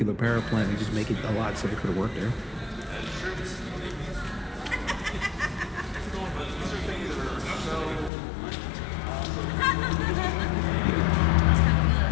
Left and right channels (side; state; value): right; drops out; at 8.1 s